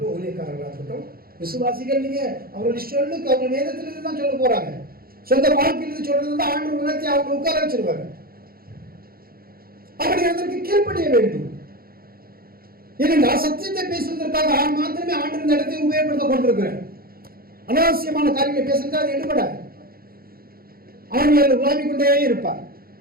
ஊழியக்காரர்களாக இருக்கட்டும், விசுவாசிகள் நீங்க அவர்கள் சொல்லுக்கு அவங்க வேதத்திலிருந்து தான் சொல்ல போறாங்க. சொந்த வாழ்க்கையிலிருந்து சொல்றது தான் ஆண்டவர் உணர்த்தி அவங்க உட்கார வச்சிருவாங்க. அப்படி அதற்கு கீழ்ப்படிய வேண்டும். ஏனென்றா சத்தியத்தை பேசுவதற்காக மாத்திரமே ஆண்டு இந்த இடத்தை உபயோகப்படுத்த கொண்டிருக்கிறேன். அனாவசியமான காரியங்களை பேசுறதா அது எடுபடாது. அவன் உலாவிக் கொண்டே இருப்பார்.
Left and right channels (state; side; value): late; left; 0.43 ms